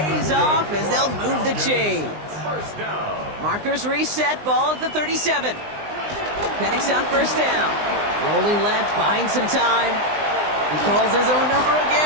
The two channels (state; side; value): late; left; 19 ms